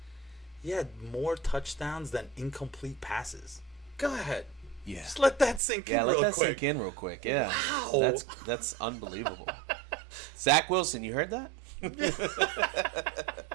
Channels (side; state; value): left; drops out; at 5.6 s